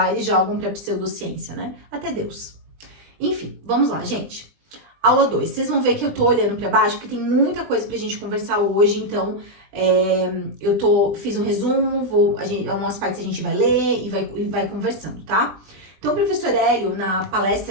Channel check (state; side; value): late; left; 20 ms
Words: eles jogam para pseudociência, né? Até Deus. Enfim, vamos lá, gente. Aula 2. Vocês vão ver que eu tô olhando para baixo, porque tem muita coisa pra gente conversar hoje, então fiz um resumo, algumas partes a gente vai ler e vai conversando, tá? Então, o professor Hélio, na